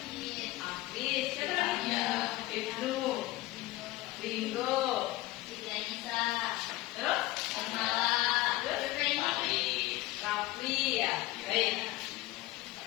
Afis. Siapa lagi? Ibnu. Ringo. Terus? Rafli ya. Baik.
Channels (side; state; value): right; quieter; 18.3 dB